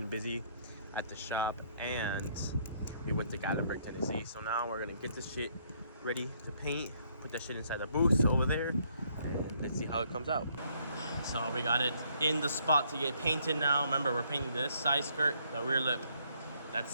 busy at the shop and we went to Gatlinburg, Tennessee. So now we're gonna get this shit ready to paint, put that shit inside the booth over there, and let's see how it comes out. So we got it in the spot to get painted now. Remember, we're painting this side skirt, the rear lip.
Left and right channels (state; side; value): inverted; both; correlation -0.68